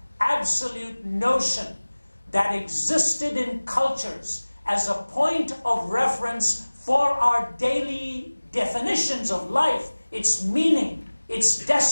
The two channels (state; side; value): inverted; both; correlation -1.00